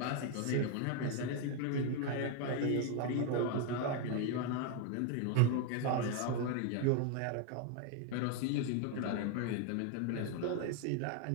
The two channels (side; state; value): both; different; correlation 0.01